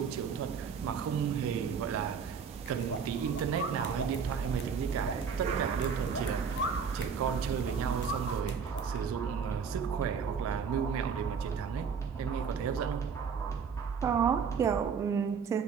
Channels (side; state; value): left; quieter; 6.3 dB